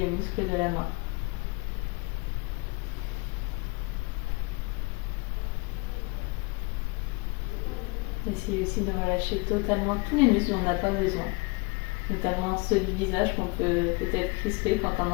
le muscle de la main. Essayez aussi de relâcher totalement tous les muscles dont on n'a pas besoin, notamment ceux du visage qu'on peut peut-être crisper quand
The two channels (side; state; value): right; quieter; 27.1 dB